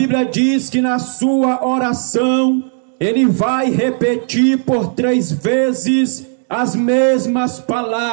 diz que na sua oração, ele vai repetir por 3 vezes as mesmas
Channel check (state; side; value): silent; left; 59 dB below the other